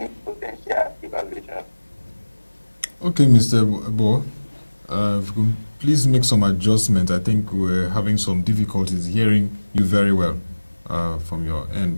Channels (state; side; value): inverted; both; correlation -1.00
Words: potential devaluation. Okay, Mr. Ebo, please make some adjustment. I think we're having some difficulties hearing you very well from your end,